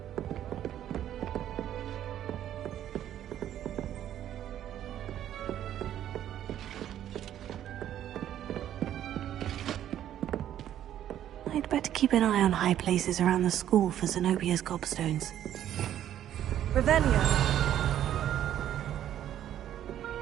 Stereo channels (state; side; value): quieter; left; 11.2 dB